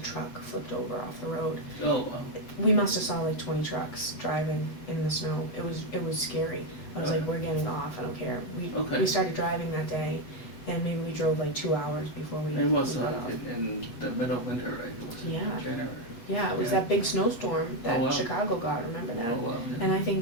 flipped over off the road. Oh wow. We must have saw like 20 trucks driving in the snow. It was scary. I was like, we're getting off. I don't care. We started driving that day, and maybe we drove like 2 hours before we. It was got off. in the middle of winter, right? It was in January. Yeah, it was that big snowstorm that Chicago got. Remember that? Oh wow. Yeah. And I think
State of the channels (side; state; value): right; late; 8.3 ms